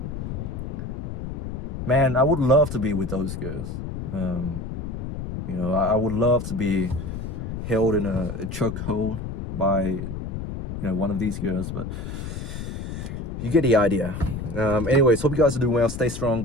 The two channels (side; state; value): left; noise; rumble, 6 dB below the sound